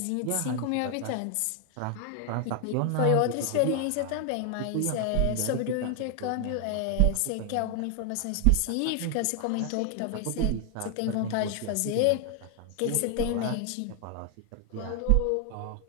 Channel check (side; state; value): both; different; correlation 0.01